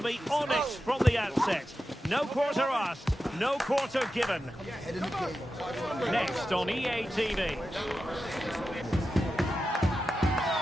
be honest from the outset. No quarter asked, no quarter given. Next on EA TV.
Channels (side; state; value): both; normal; correlation 0.91